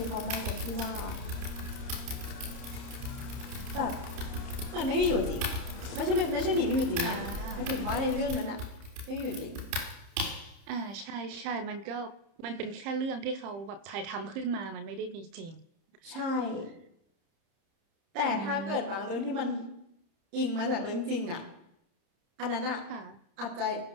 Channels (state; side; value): late; left; 30 ms